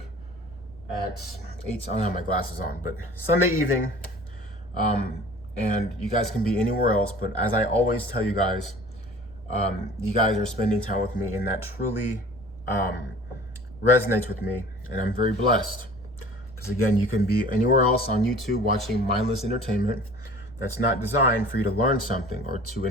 at 8. I don't have my glasses on, but Sunday evening. And you guys can be anywhere else, but as I always tell you guys are spending time with me, and that truly resonates with me, and I'm very blessed. Because again, you can be anywhere else on YouTube watching mindless entertainment that's not designed for you to learn something or to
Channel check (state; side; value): noise; right; rumble, 20 dB below the sound